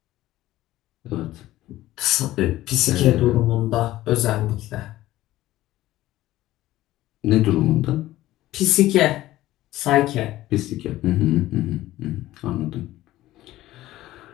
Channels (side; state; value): right; quieter; 15.6 dB